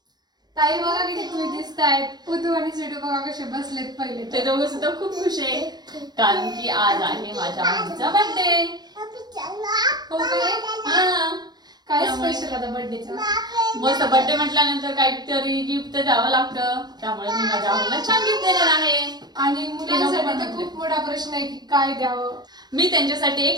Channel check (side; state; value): left; late; 0.20 ms